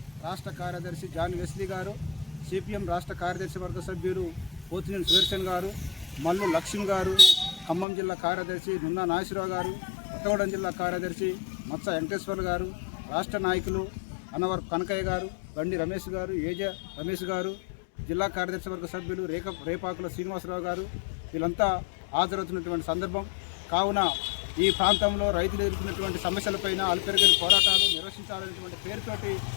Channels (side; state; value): right; drops out; at 7.9 s